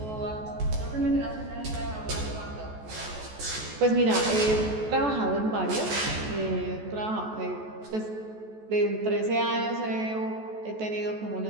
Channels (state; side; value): late; left; 14 ms